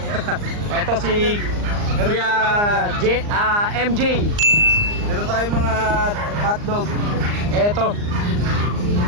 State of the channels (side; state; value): left; late; 39 ms